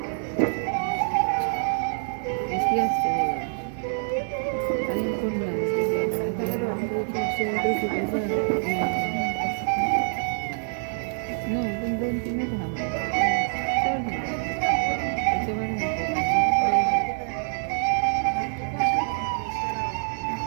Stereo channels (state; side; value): silent; left; digital silence